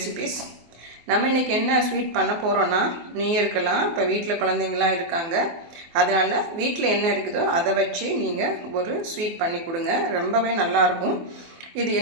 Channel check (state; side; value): late; left; 24 ms